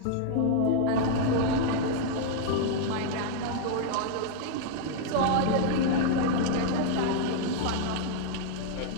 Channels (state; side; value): different; both; correlation -0.01